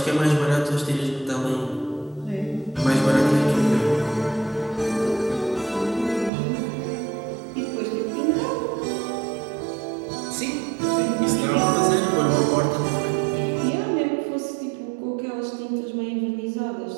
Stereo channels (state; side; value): drops out; left; at 6.3 s